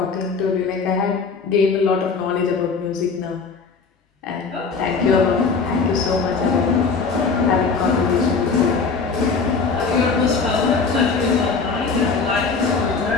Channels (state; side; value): quieter; right; 4.9 dB